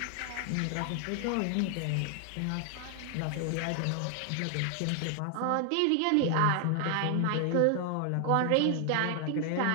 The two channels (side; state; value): both; different; correlation 0.00